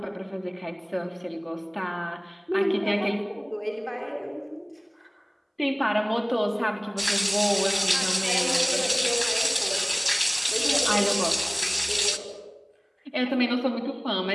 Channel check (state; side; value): identical; both; correlation 1.00